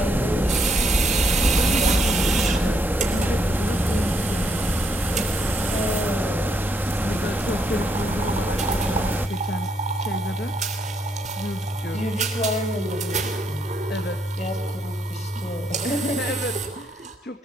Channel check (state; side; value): normal; both; correlation 0.74